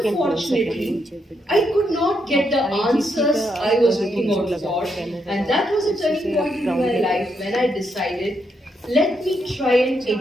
I could not get the answers I was looking out for, and that was a turning point in my life when I decided, let me try and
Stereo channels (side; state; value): both; normal; correlation 0.79